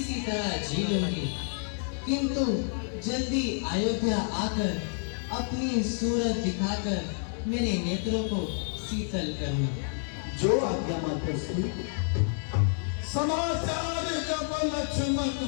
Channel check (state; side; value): silent; right; digital silence